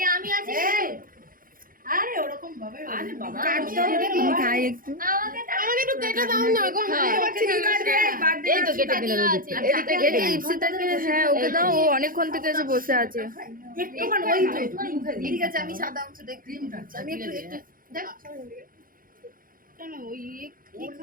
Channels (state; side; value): late; left; 0.41 ms